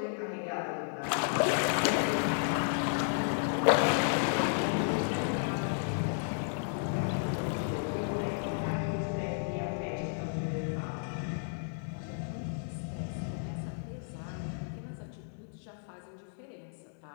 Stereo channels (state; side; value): silent; right; digital silence